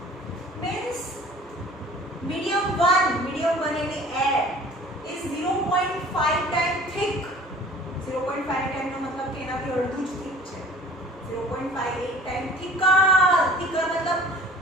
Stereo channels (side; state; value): both; normal; correlation 0.47